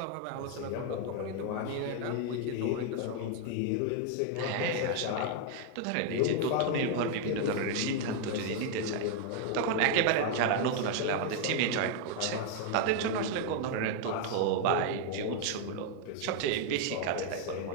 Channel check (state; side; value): different; both; correlation 0.00